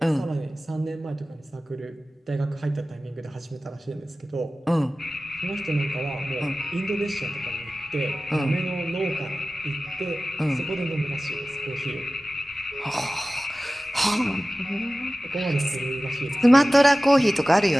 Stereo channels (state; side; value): normal; both; correlation 0.96